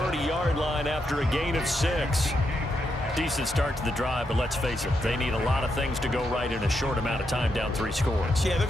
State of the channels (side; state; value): both; normal; correlation 0.82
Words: line after a gain of 6. Decent start to the drive, but let's face it, they need a lot of things to go right in a short amount of time, down 3 scores. Yeah, they're